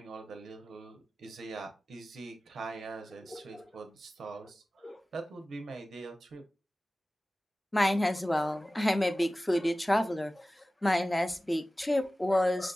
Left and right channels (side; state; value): both; normal; correlation 0.96